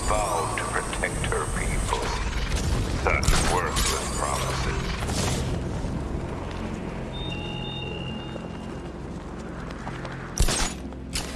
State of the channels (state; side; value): identical; both; correlation 1.00